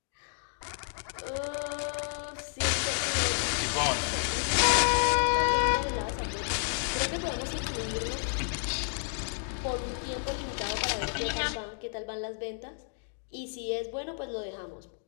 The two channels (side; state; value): right; silent; 57 dB below the other